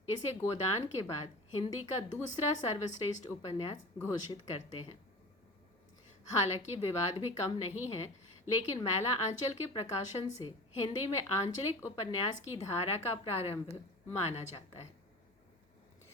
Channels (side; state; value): both; normal; correlation 0.35